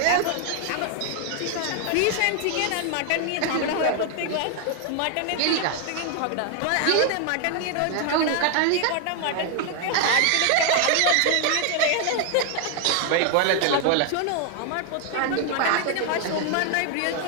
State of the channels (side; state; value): both; different; correlation 0.00